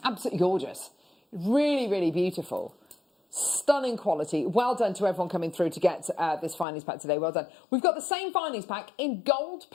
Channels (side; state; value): right; drops out; at 6.7 s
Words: absolutely gorgeous. Really, really beautiful. Stunning quality. Well done to everyone coming through to get this findings pack today. Well done. We've got the same findings pack in gold